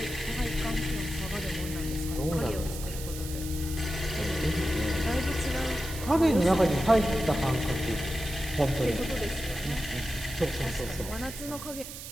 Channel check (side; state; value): right; noise; hiss, 11 dB below the sound